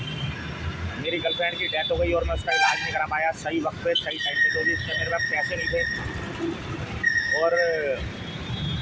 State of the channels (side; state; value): both; identical; correlation 1.00